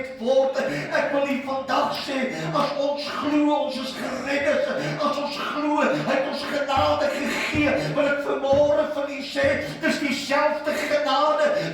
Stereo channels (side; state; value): both; identical; correlation 1.00